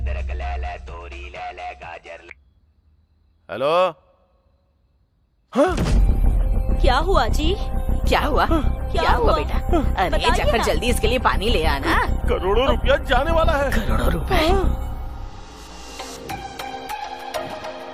हेलो। क्या हुआ जी? क्या हुआ बेटा? अरे जाकर जल्दी इसके लिए पानी ले आना। करोड़ों रुपया जाने वाला है। करोड़ों रुपए?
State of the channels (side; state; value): both; identical; correlation 1.00